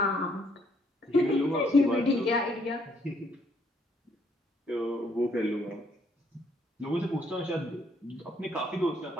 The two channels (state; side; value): normal; both; correlation 0.68